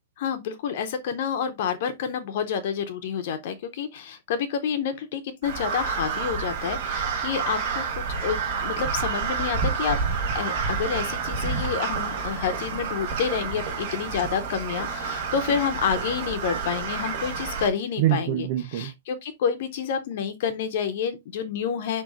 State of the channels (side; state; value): both; inverted; correlation -0.31